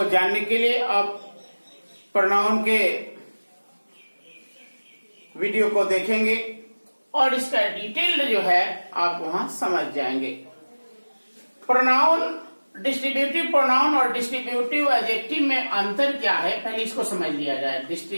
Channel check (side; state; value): both; inverted; correlation -1.00